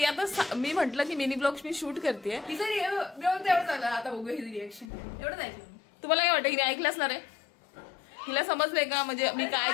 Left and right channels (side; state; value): right; drops out; at 4.9 s